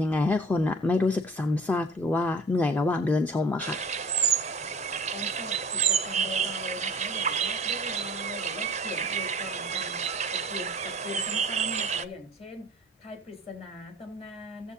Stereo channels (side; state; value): both; normal; correlation 0.45